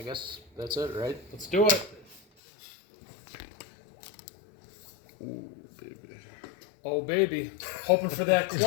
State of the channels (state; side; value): drops out; right; at 2.2 s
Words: guess that's it, right? Let's do it. Ooh, baby. Oh, baby. Hoping for that